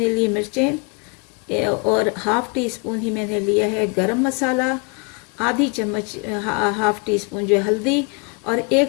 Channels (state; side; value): quieter; right; 33.2 dB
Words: लिए मिर्चें, और 1/2 टीस्पून ही मैंने लिया है गरम मसाला, आधी चम्मच 1/2 टीस्पून जो है हल्दी, और